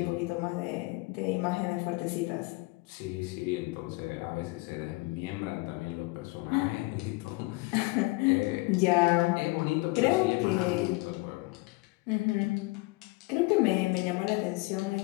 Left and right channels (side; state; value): right; quieter; 24.0 dB